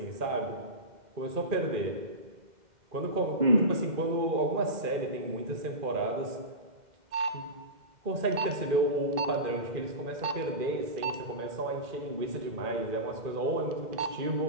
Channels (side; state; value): left; late; 2.1 ms